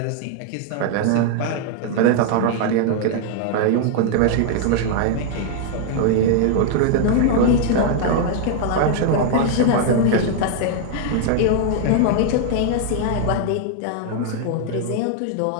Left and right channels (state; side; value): different; both; correlation 0.00